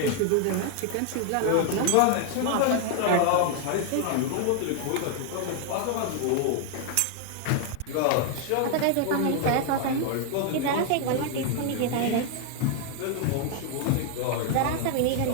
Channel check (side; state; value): both; different; correlation 0.00